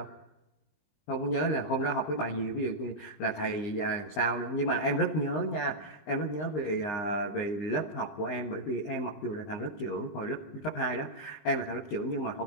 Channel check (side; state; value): right; late; 20 ms